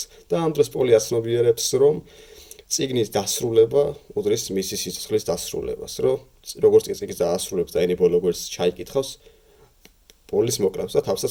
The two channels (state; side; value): identical; both; correlation 1.00